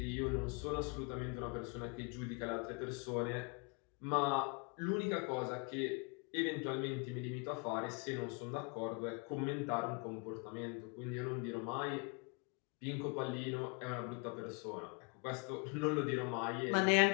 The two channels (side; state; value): right; quieter; 32.5 dB